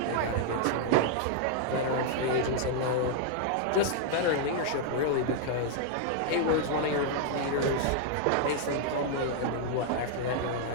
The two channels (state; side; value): different; both; correlation 0.00